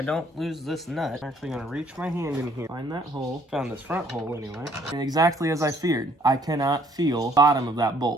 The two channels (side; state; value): both; normal; correlation 0.63